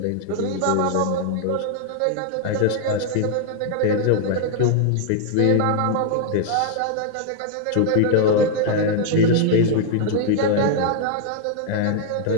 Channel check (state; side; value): different; both; correlation 0.00